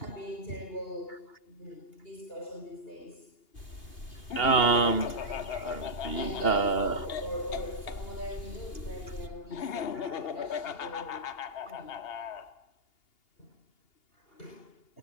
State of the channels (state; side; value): late; right; 2.8 ms